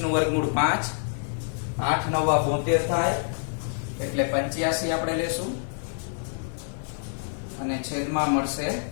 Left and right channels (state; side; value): silent; right; digital silence